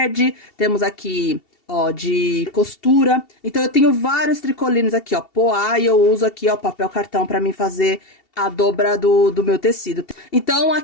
Temos aqui, ó, de costura. Então, eu tenho vários tricolines aqui, ó, poá, e eu uso aqui, ó, papel cartão pra mim fazer a dobra do meu tecido. Então,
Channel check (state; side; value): late; right; 2.7 ms